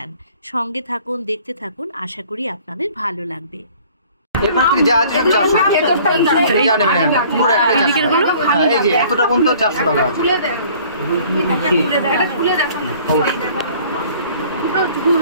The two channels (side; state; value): both; inverted; correlation -0.53